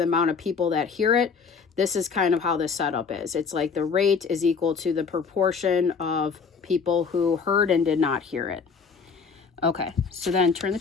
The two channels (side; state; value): right; quieter; 5.6 dB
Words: amount of people that hear it, this is kind of how the setup is. It's like the rate is equal to the proportion of people who heard and did not hear it. Okay, so then turn the